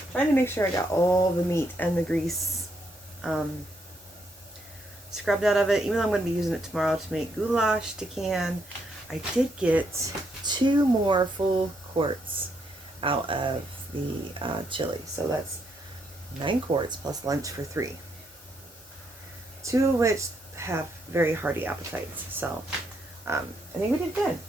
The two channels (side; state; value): both; normal; correlation 0.76